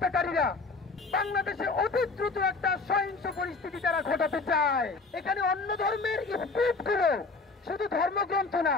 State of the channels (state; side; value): quieter; right; 4.0 dB